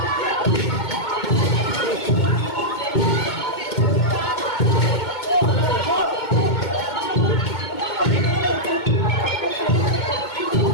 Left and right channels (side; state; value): right; late; 2.2 ms